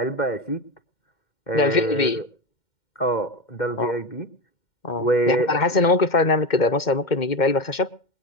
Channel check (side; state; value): right; late; 2.1 ms